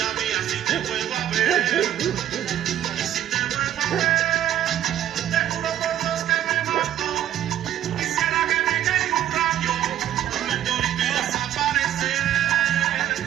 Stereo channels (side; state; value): left; quieter; 11.5 dB